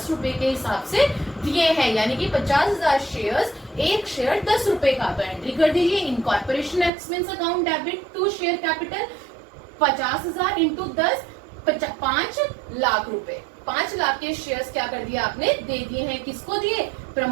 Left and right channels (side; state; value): left; drops out; at 6.9 s